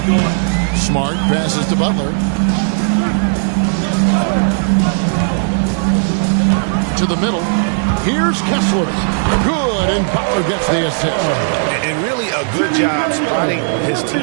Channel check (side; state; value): left; silent; 70 dB below the other